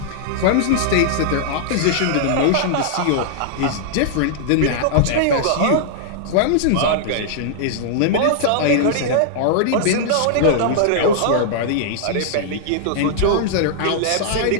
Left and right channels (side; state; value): both; different; correlation -0.01